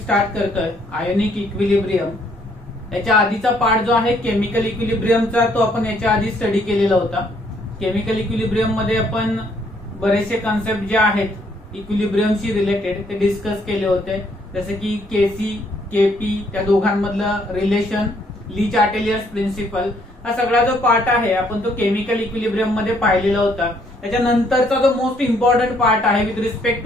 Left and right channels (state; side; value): normal; both; correlation 0.68